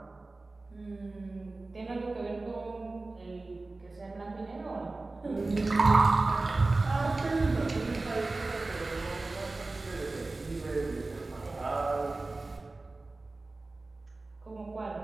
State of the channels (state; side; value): quieter; left; 3.3 dB